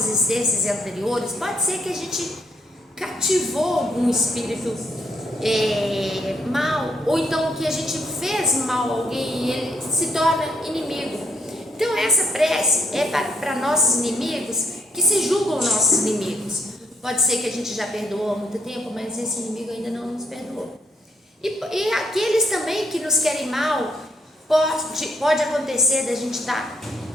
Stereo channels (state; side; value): normal; both; correlation 0.73